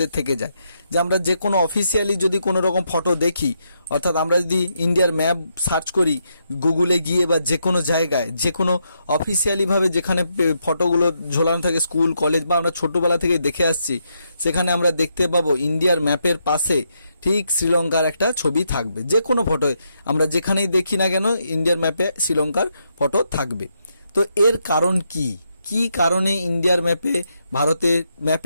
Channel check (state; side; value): inverted; both; correlation -0.80